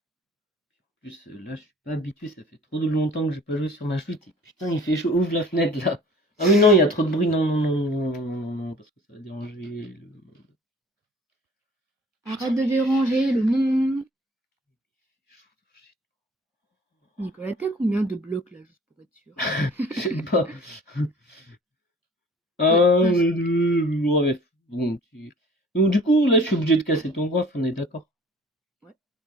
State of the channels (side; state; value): both; normal; correlation 0.49